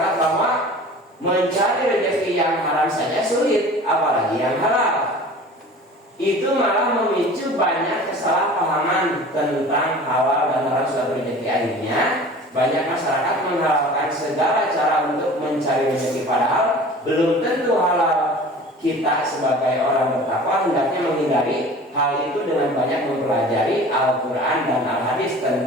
bahwa mencari rezeki yang haram saja sulit, apalagi yang halal. Itu malah memicu banyak kesalahpahaman tentang halal dan haram suatu rezeki. Akhirnya banyak masyarakat menghalalkan segala cara untuk mencari rezeki, padahal belum tentu halal. Kita sebagai orang bertakwa hendaknya menghindari hal itu dengan banyak mempelajari Al-Quran dan Al-Hadis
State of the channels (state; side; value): normal; both; correlation 0.42